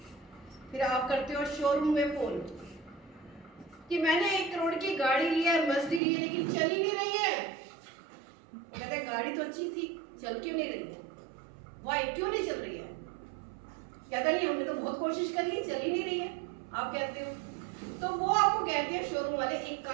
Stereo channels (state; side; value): drops out; left; at 6.0 s